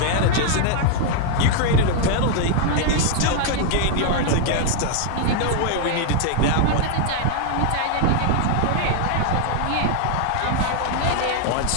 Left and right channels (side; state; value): both; different; correlation 0.00